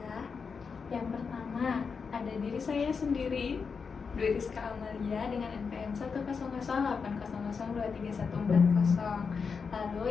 Yang pertama ada diri saya sendiri, Dwi Rizka Amalia dengan NPM 10080023140. Lalu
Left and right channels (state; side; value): quieter; right; 5.5 dB